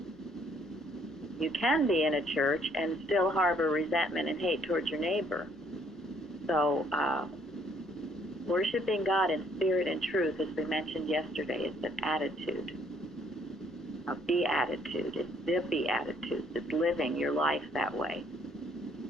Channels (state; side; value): normal; both; correlation 0.65